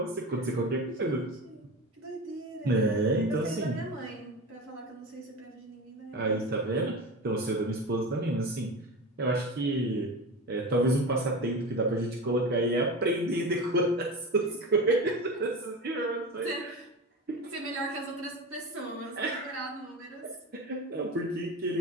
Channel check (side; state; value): both; normal; correlation 0.28